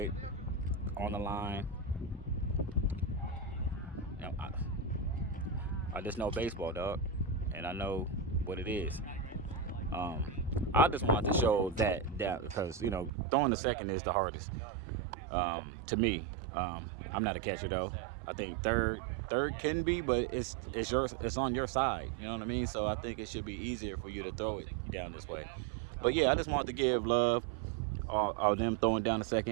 on the line. You know, I just know baseball, dog, and I know what it is. I just wanted to show that because throwing the second is the hardest to me. I'm not a catcher though. I think third can be, but it's on your side. You know what I mean? So I think it should be easier for you to throw it down this way. But yeah, I just wanted to give love of them throwing down the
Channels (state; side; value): drops out; left; at 13.1 s